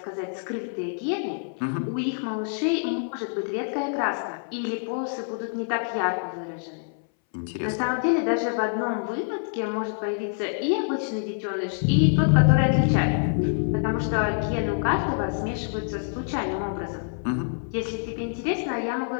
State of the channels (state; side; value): silent; right; 60 dB below the other